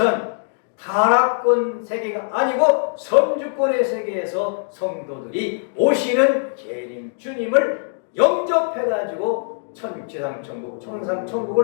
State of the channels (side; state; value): right; silent; digital silence